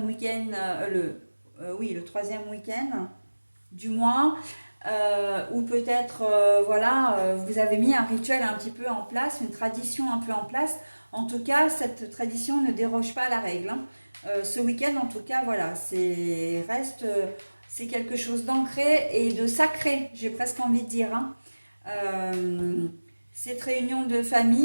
week-end, oui, le troisième week-end du mois, ou peut-être, voilà, vous avez mis un rituel un petit peu en place, une tradition un peu en place. En tout cas, cette tradition ne déroge pas à la règle, hein. Ce week-end, en tout cas, voilà, c'est quelque chose d'ancré et de sacré, j'ai presque envie de dire, hein. Cette réunion de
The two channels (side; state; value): both; inverted; correlation -1.00